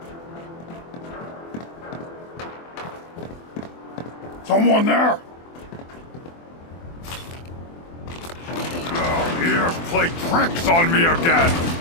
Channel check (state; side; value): late; right; 24 ms